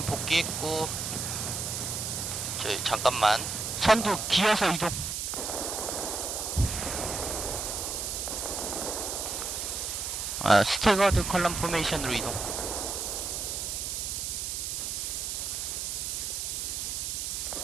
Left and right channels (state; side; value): noise; right; hiss, 3 dB below the sound